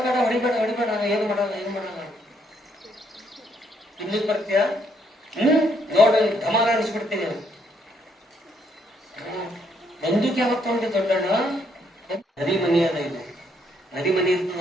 ಬೇಡ ಹೊಡಿಬೇಡ ಏನು ಮಾಡಲ್ಲ ತಿನ್ಲಿಕ್ಕೆ ಬರ್ತೀಯ, ನೋಡಿ ಧಮಾರ ಅನಿಸ್ಬಿಡ್ತೀನಿ. ಬಂದೂಕ್ ಯಾವತ್ತು ತಗೊಂಡಿ ದೊಡ್ಡಣ್ಣ? ನರಿ ಮನಿ ಅದ ಇದು, ನರಿ ಮನಿ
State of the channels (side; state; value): both; normal; correlation 0.72